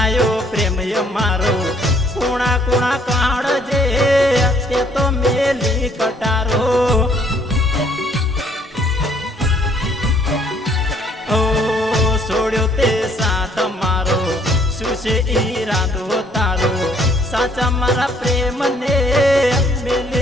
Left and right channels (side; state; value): both; normal; correlation 0.64